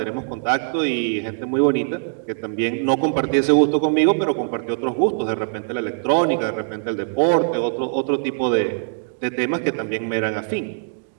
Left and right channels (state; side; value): silent; left; digital silence